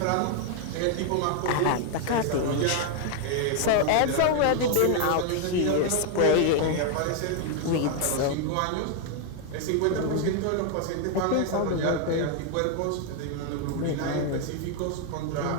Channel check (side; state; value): both; different; correlation 0.00